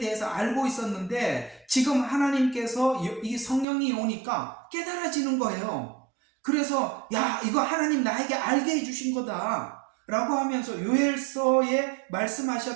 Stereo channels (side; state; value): left; drops out; at 3.7 s